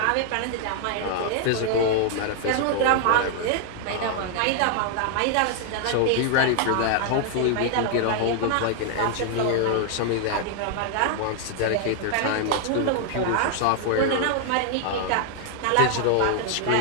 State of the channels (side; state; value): both; different; correlation 0.00